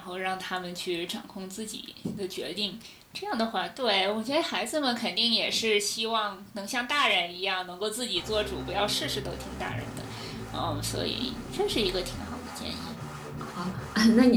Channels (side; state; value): both; identical; correlation 1.00